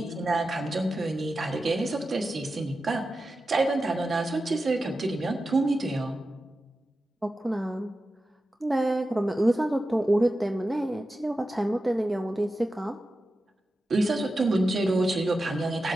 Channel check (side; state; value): both; normal; correlation 0.92